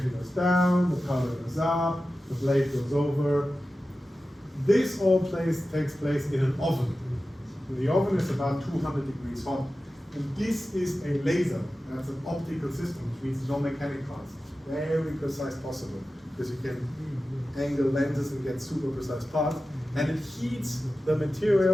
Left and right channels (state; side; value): normal; both; correlation 0.94